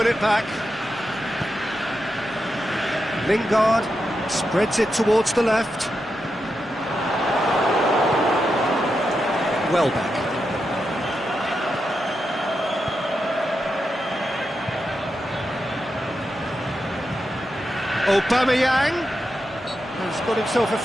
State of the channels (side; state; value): both; normal; correlation 0.87